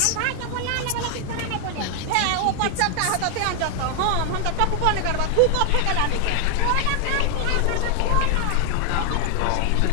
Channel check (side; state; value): both; different; correlation 0.00